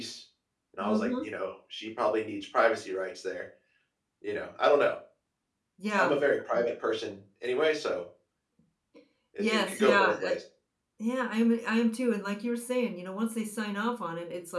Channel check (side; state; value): both; identical; correlation 1.00